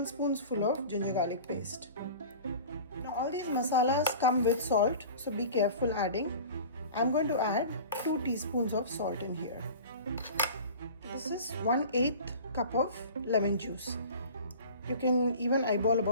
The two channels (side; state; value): both; inverted; correlation -0.39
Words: full of ginger garlic paste. Now all these masalas come with salt, so be careful adding. I'm going to add 2 teaspoons of salt in here. This is 1/8 cup of lemon juice. You can even eyeball